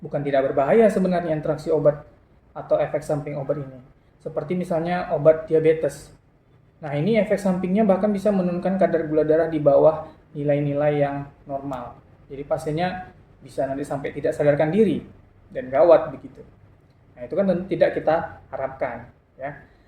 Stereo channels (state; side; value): identical; both; correlation 1.00